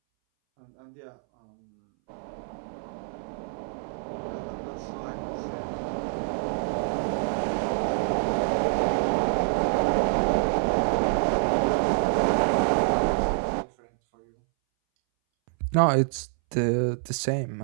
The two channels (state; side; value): silent; left; 61 dB below the other